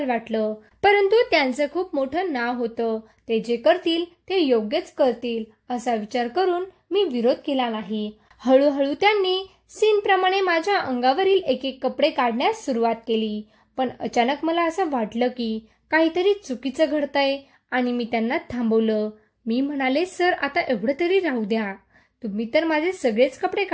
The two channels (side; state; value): both; identical; correlation 1.00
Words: वाटलं. परंतु त्यांचं खूप मोठं नाव होतं. ते जे करतील ते योग्यच करतील असा विचार करून मी विरोध केला नाही. हळूहळू त्यांनी सीन प्रमाणे माझ्या अंगावरील एक एक कपडे काढण्यास सुरुवात केली. पण अचानक मला असं वाटलं की काहीतरी चुकीचं घडतंय आणि मी त्यांना थांबवलं. मी म्हणाले, सर, आता एवढं तरी राहू द्या. तुम्ही तर माझे सगळेच कपडे